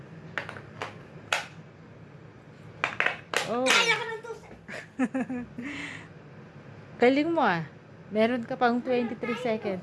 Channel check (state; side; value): identical; both; correlation 1.00